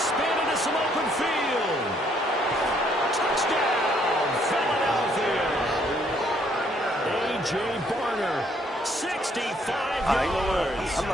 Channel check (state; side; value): normal; both; correlation 0.67